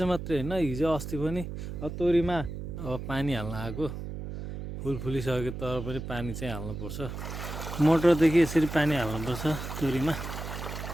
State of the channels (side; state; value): right; noise; hum, 7 dB below the sound